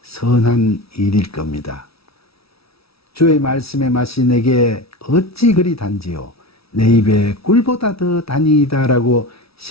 선한 일일 겁니다. 주의 말씀의 맛이 내게 어찌 그리 단지요 내 입에 꿀보다 더 단이다 라고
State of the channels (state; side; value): late; right; 0.76 ms